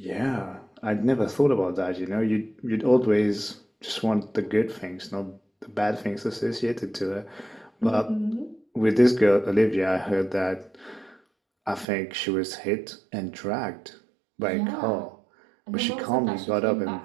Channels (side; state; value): left; drops out; at 11.9 s